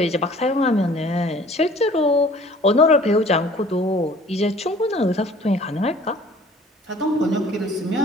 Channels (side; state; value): both; normal; correlation 0.51